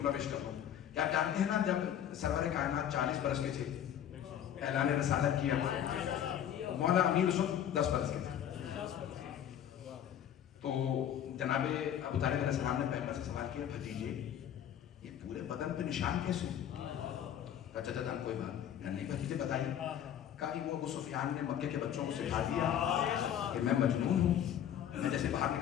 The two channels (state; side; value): quieter; right; 10.0 dB